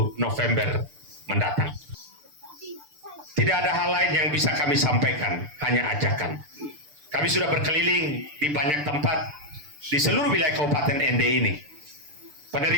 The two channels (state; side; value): late; left; 6.8 ms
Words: November mendatang. Tidak ada hal lain yang bisa kami sampaikan, hanya ajakan. Kami sudah berkeliling di banyak tempat di seluruh wilayah Kabupaten Ende ini.